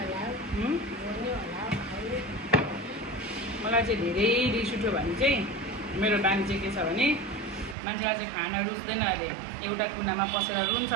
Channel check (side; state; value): left; drops out; at 7.8 s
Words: मलाई चाहिँ धेरै रिस उठ्यो भने चाहिँ मेरो बानी चाहिँ के छ भने मान्छेलाई चाहिँ खाना रुच्दैन अरे, एउटा कुनामा पसेर रुन्छ